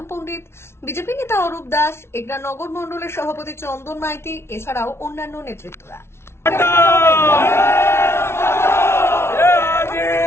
পণ্ডিত, বিজেপি নেতা অরূপ দাস, এগরা নগর মণ্ডলের সভাপতি চন্দন মাইতি, এছাড়াও অন্যান্য নেতৃত্বরা।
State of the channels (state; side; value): late; right; 0.12 ms